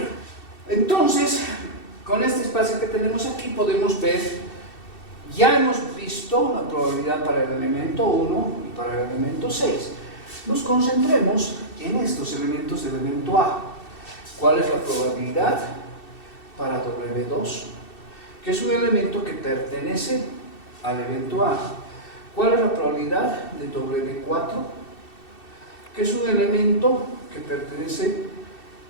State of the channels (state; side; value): late; right; 2.7 ms